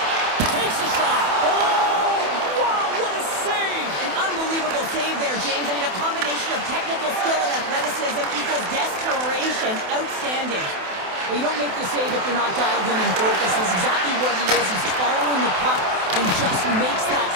Takes a shot. Oh, wow, what a save! An unbelievable save there, James. I mean, a combination of technical skill and athleticism equals desperation. Outstanding. Well, you don't make the save if you're not dialed in and focused. That's exactly what he is. He's following the puck and just makes that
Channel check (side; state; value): left; late; 28 ms